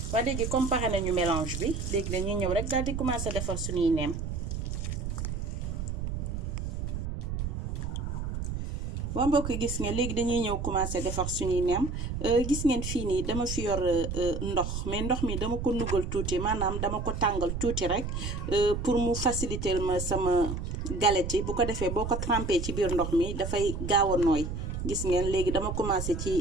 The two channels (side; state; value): right; noise; rumble, 4 dB below the sound